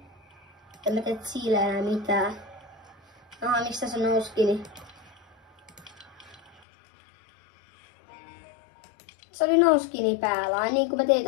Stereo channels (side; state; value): right; drops out; at 6.6 s